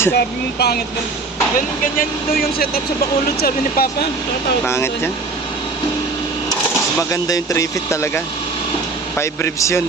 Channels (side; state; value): left; quieter; 3.8 dB